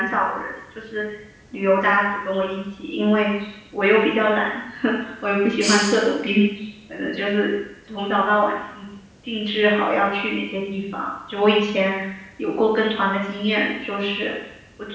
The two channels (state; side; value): identical; both; correlation 1.00